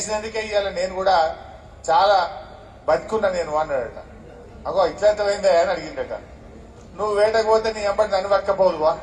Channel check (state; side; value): identical; both; correlation 1.00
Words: ఇవాళ నేను కూడా చాలా బతుకున్నా నేను అన్నాడట. అగో ఇట్లంతమైందా అని అడిగిందట. నువ్వు వేటకపోతే నీ ఎంబడి నన్ను పక్కపోదువా,